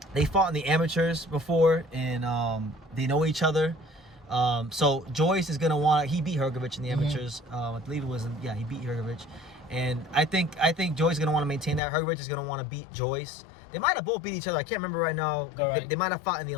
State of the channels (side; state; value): right; drops out; at 11.8 s